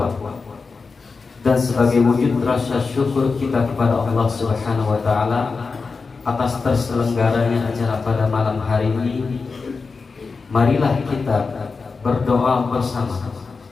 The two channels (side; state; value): right; quieter; 4.5 dB